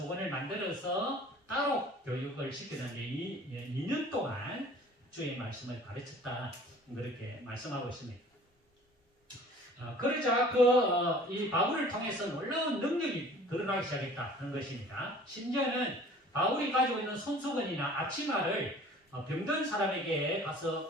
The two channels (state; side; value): normal; both; correlation 0.48